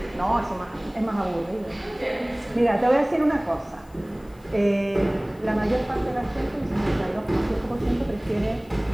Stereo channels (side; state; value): left; noise; hiss, 30 dB below the sound